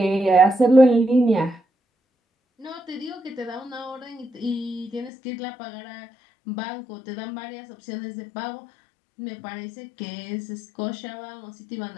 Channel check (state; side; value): drops out; right; at 5.1 s